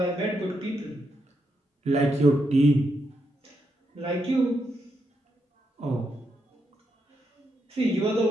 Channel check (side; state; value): both; normal; correlation 0.81